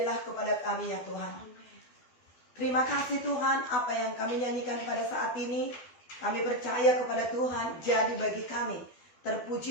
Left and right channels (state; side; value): late; right; 12 ms